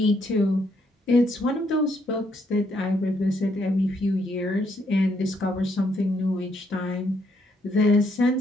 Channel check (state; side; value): normal; both; correlation 0.73